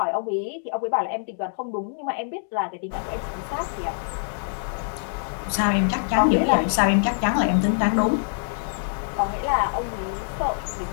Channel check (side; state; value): right; silent; digital silence